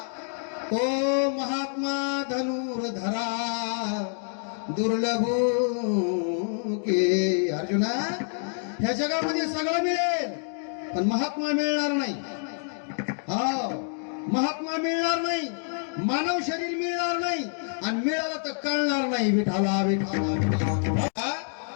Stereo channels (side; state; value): right; silent; 60 dB below the other